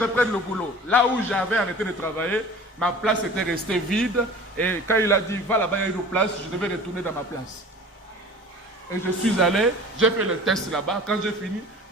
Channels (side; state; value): both; normal; correlation 0.42